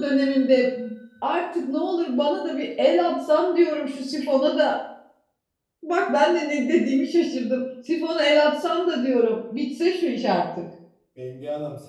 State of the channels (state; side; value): identical; both; correlation 1.00